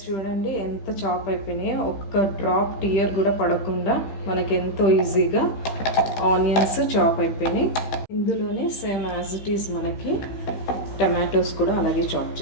చూడండి ఎంత చాప్ అయిపోయినాయో. ఒక్క డ్రాప్ టీయర్ కూడా పడకుండా మనకి ఎంతో ఈజీగా ఆనియన్స్ చాప్ అయిపోయినాయి. ఇందులోనే సేమ్ యాజ్ ఇట్ ఈజ్ మనకి టమాటోస్ కూడా అలాగే చాప్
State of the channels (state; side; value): late; right; 15 ms